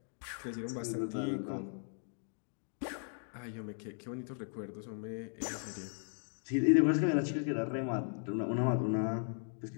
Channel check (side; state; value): right; silent; 53 dB below the other